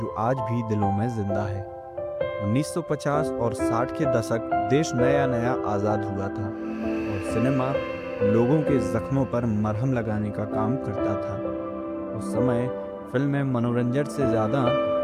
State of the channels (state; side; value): identical; both; correlation 1.00